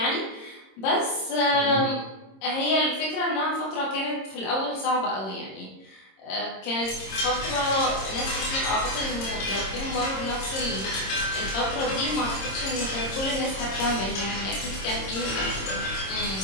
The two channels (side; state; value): right; late; 26 ms